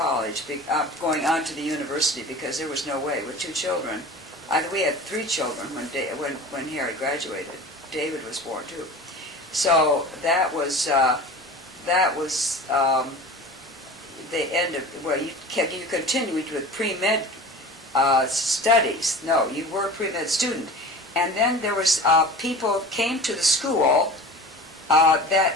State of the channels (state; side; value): normal; both; correlation 0.37